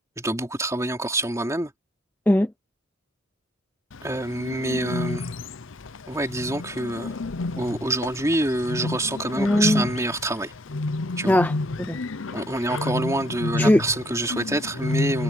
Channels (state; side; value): normal; both; correlation 0.68